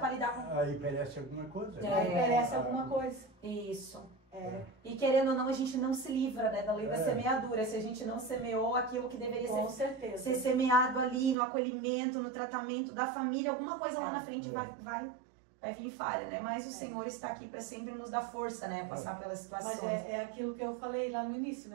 lidar com... Aí perece alguma coisa. Aí perece alguma coisa. Isso. E querendo ou não, a gente não se livra, né, da lei da semeadura. Se a gente não semeou aquilo que deveria ser semeado ali, no acolhimento, no tratamento da família, alguma coisa lá na frente vai vir falha, né? Mas o Senhor está aqui para sempre nos dar força, né? Passar pelas situações. Mas é aquilo que eu falei lá no início,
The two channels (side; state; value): left; drops out; at 11.4 s